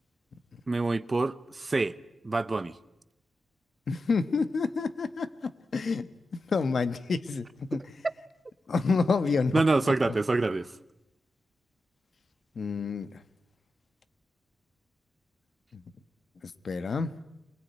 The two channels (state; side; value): normal; both; correlation 0.90